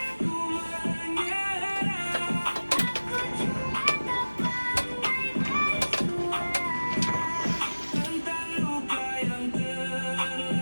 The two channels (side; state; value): both; inverted; correlation -1.00